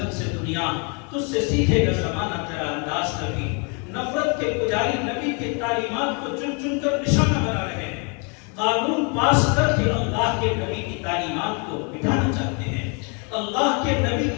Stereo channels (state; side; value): quieter; right; 35.2 dB